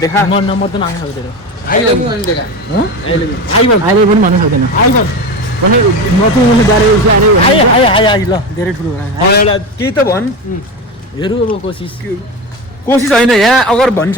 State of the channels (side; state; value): both; normal; correlation 0.23